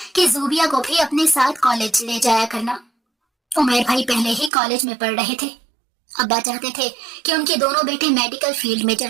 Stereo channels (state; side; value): drops out; left; at 4.5 s